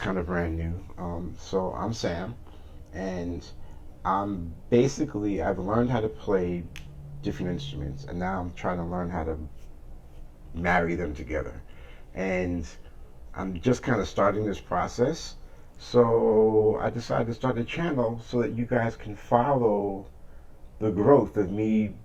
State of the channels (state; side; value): identical; both; correlation 1.00